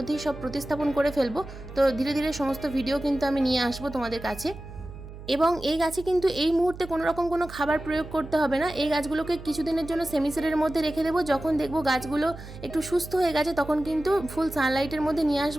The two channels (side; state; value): right; noise; hum, 14 dB below the sound